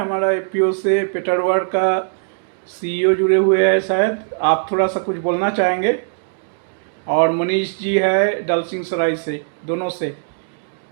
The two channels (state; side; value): silent; left; digital silence